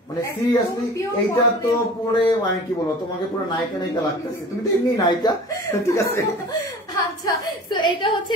মানে সিরিয়াসলি এইটা তো পরে মানে কি বলবো, তোমাকে পুরো নায়িকা নায়িকা লাগতেছে, তুমি তো এমনি নায়িকা, ঠিক আছে? আচ্ছা সো এটা হচ্ছে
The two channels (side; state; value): both; normal; correlation 0.41